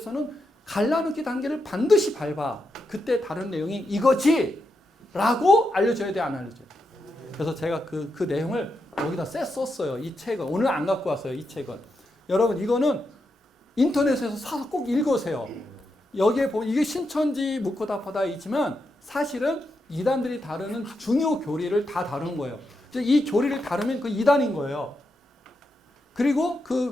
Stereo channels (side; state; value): both; normal; correlation 0.85